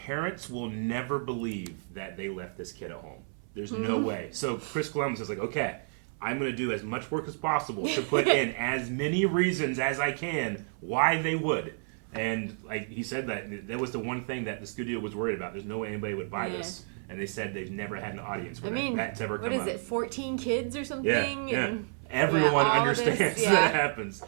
will never believe that they left this kid at home. There's no way. So Chris Columbus is like, okay, I'm going to do as much work as possible to put in as many reasons as I can why they would. And like he said, that was the one thing that the studio was worried about. There's no way anybody would buy this, and they said they've never had an audience where that's ever come up. What is it, 14 kids or something? Yeah. Everyone understands that happens.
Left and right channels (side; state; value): left; silent; 58 dB below the other